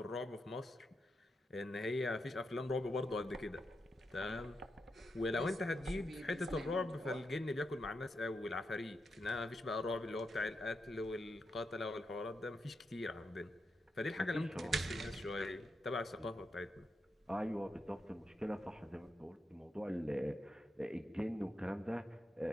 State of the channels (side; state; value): both; normal; correlation 0.85